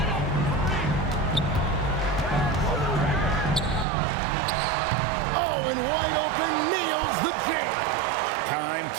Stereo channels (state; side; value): drops out; left; at 3.9 s